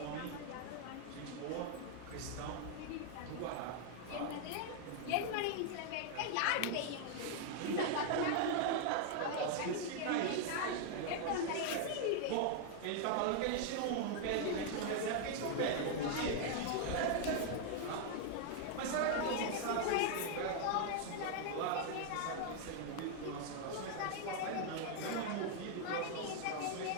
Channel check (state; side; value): different; both; correlation 0.00